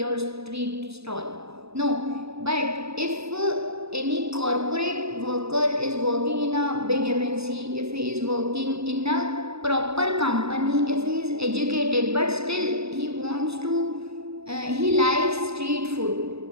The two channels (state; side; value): late; left; 0.78 ms